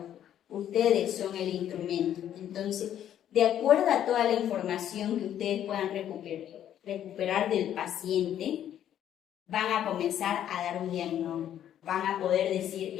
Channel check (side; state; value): right; quieter; 10.6 dB